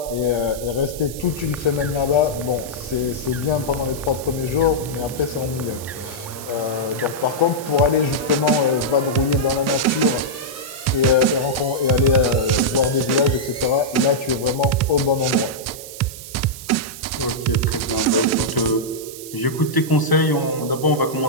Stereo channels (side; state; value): right; noise; hiss, 13 dB below the sound